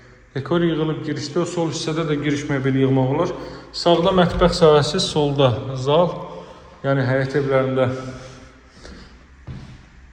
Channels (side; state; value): both; identical; correlation 1.00